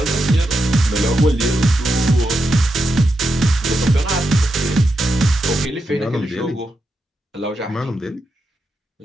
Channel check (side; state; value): both; normal; correlation 0.86